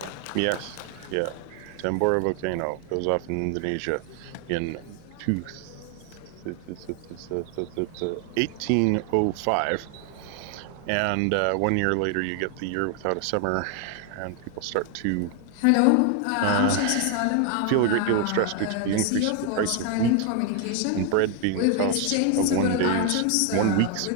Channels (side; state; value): both; different; correlation 0.00